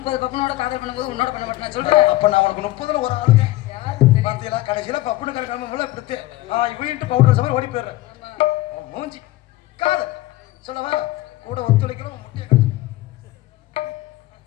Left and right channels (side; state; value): right; quieter; 17.4 dB